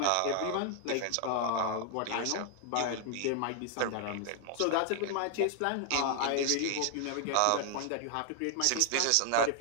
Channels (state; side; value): different; both; correlation 0.00